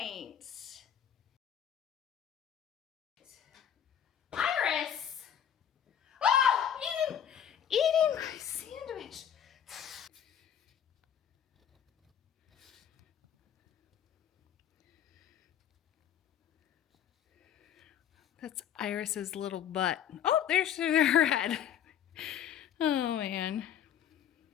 Iris! Oh, eating my sandwich. That's Iris's little butt. Oh, there's her head. Oh, man.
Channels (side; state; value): right; quieter; 9.4 dB